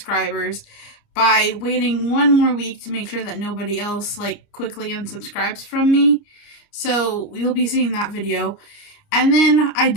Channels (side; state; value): right; late; 29 ms